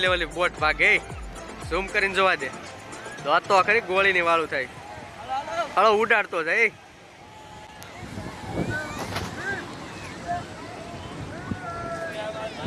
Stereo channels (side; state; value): both; identical; correlation 1.00